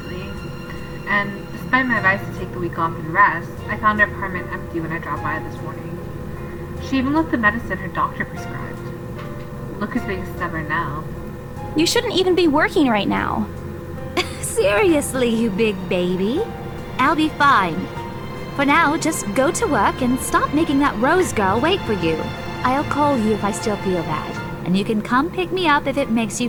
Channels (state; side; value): identical; both; correlation 1.00